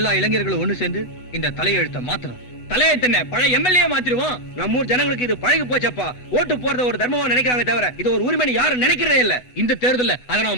இளைஞர்களும் ஒண்ணு சேர்ந்து இந்த தலையெழுத்தை மாத்தணும். தலையெழுத்தன பழைய எம்எல்ஏ மாத்திருவோம். நம்ம ஊர் ஜனங்களுக்கு இது பழகி போச்சப்பா. ஓட்டு போறத ஒரு தர்மமா நினைக்கிறாங்க தவிர இது ஒரு உரிமைன்னு யாரும் நினைக்கிறதே இல்ல. இந்த தேர்தல்ல அதை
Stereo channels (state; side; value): late; right; 8.1 ms